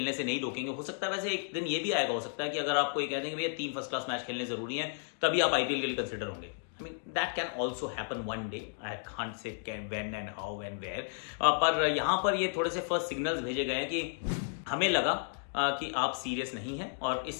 से नहीं रोकेंगे। हो सकता है वैसे एक दिन ये भी आएगा, हो सकता है कि अगर आपको ये कह देंगे भैया 3 फर्स्ट क्लास मैच खेलने जरूरी हैं तभी आप आईपीएल के लिए कंसिडर होंगे। That can also happen one day, I can't say when and how and where. पर यहाँ पर ये थोड़े से फर्स्ट सिग्नल्स भेजे गए हैं कि हमें लगा कि आप सीरियस नहीं हैं और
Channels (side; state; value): right; silent; digital silence